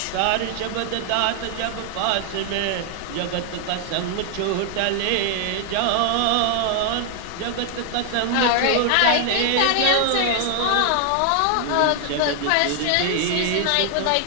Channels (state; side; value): different; both; correlation 0.00